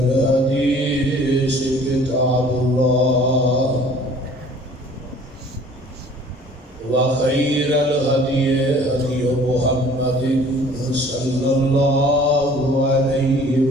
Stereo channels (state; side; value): normal; both; correlation 0.51